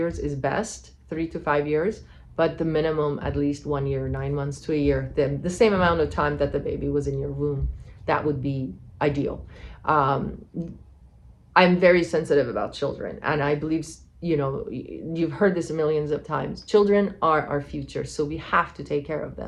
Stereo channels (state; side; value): identical; both; correlation 1.00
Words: is best, 3 to 5 years, but the minimum at least 1 year, 9 months to a year, the same amount of time that the baby was in your womb. That would be ideal. I'm very sensitive about children, and I believe you've heard this millions of times. Children are our future, so we have to take care of